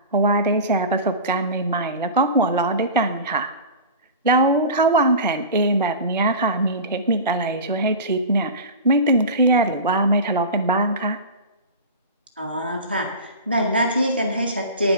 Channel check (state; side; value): inverted; both; correlation -0.31